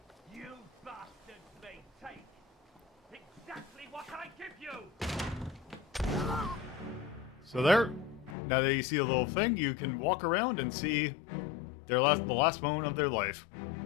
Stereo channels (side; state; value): right; drops out; at 8.3 s